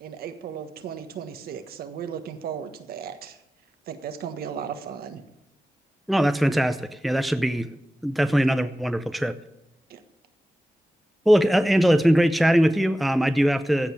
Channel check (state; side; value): normal; both; correlation 0.95